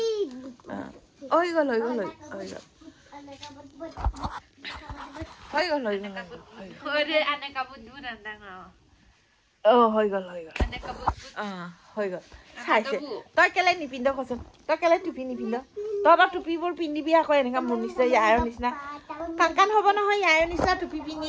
হৈ গ'ল চাইছে তই কেলে নিপিন্ধ কচোন তই কেলে টুপি নিপিন্ধ তহঁতৰ টুপিবোৰ পিন্ধিবি আকৌ এনেকা মোৰ নিচিনা ইয়াৰ নিচিনা কাণ হ'ব নহয় ইয়াৰ নিচিনা টুপি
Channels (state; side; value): identical; both; correlation 1.00